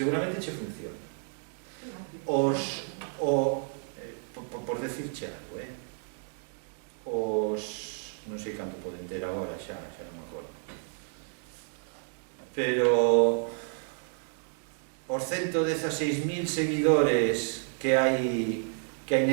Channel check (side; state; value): left; silent; 57 dB below the other